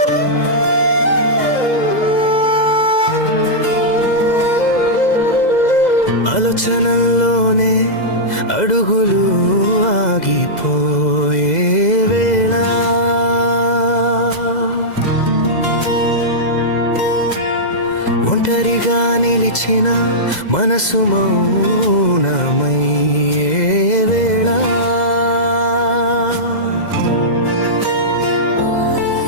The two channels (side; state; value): right; late; 2.0 ms